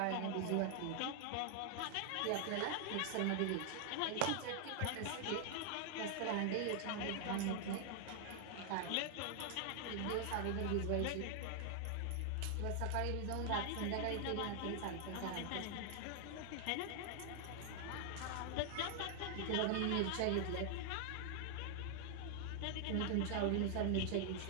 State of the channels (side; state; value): both; different; correlation 0.00